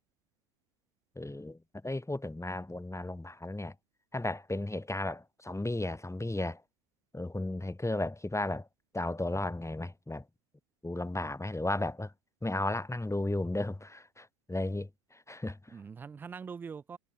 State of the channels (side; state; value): both; normal; correlation 0.85